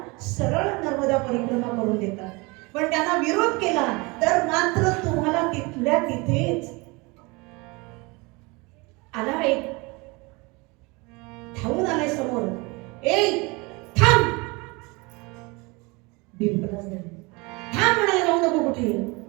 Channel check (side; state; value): left; quieter; 26.4 dB